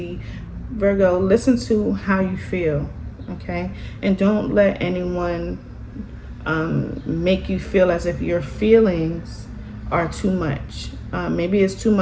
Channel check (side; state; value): both; identical; correlation 1.00